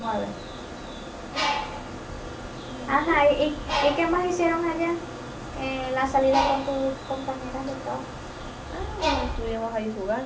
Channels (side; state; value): both; identical; correlation 1.00